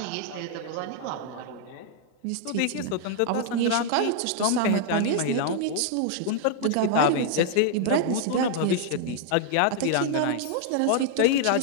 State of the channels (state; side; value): different; both; correlation 0.00